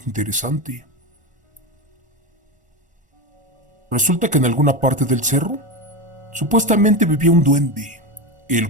interesante. Resulta que en alguna parte del cerro supuestamente vivía un duende, el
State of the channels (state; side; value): late; left; 1.5 ms